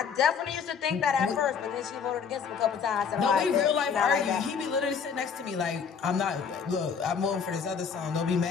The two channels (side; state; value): right; quieter; 6.4 dB